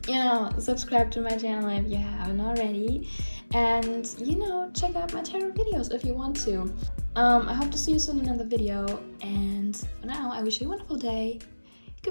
you know, subscribe to my channel if you haven't already. And, you know, check out my tarot videos if you want to. I hope to see you soon in another video. And for now, I wish you a wonderful day.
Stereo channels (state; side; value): inverted; both; correlation -1.00